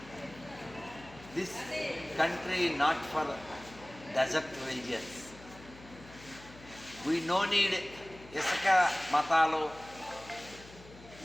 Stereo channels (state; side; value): noise; left; hum, 19 dB below the sound